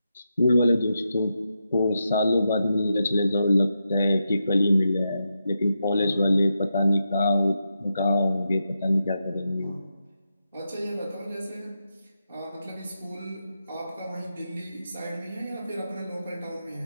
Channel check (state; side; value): inverted; both; correlation -0.86